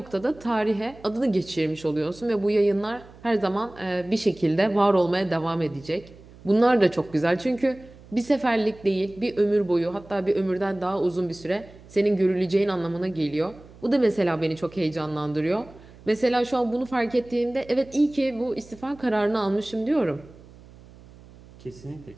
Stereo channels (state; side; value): noise; right; hum, 22 dB below the sound